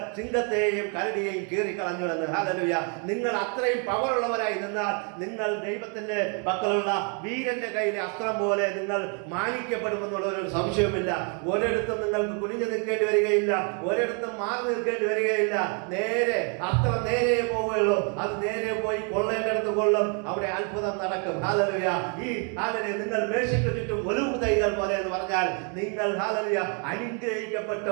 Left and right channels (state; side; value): quieter; left; 38.8 dB